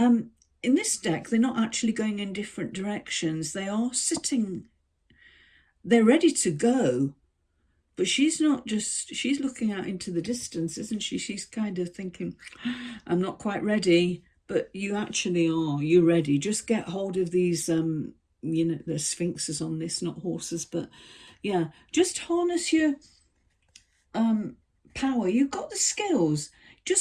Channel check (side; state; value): both; identical; correlation 1.00